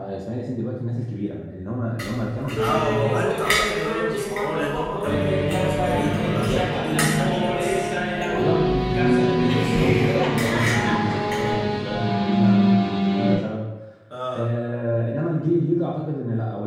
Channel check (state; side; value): identical; both; correlation 1.00